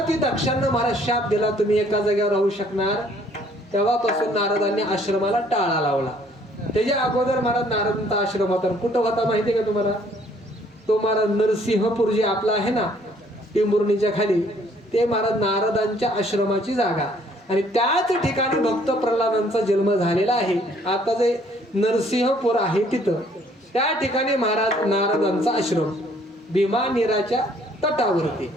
दक्षांना महाराज शाप दिला, तुम्ही एका जागेवर राहू शकणार. तेव्हापासून नारदांनी आश्रमाला टाळा लावला. त्याच्या अगोदर महाराज नारदांचा आश्रम होता. कुठं होता माहिती का तुम्हाला? तो महाराज नरसिंहपूर जे आपला आहे ना, टेंभुर्णीच्या खाली, ते महाराज नारदांच्या आश्रमाची जागा. आणि त्याच ठिकाणी भक्त प्रल्हादांचा जन्म झालेला आहे. आता जे नरसिंहपूर आहे तिथं त्या ठिकाणी महाराज नारदांचा आश्रम, भीमा नीराच्या तटावरती.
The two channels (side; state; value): both; normal; correlation 0.62